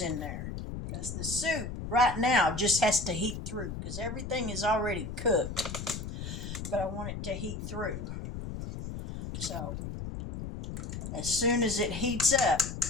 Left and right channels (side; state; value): left; noise; rumble, 7 dB below the sound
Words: in there. Because the soup right now just has to heat through because everything is already cooked. But I want it to heat through. So as soon as it heats up,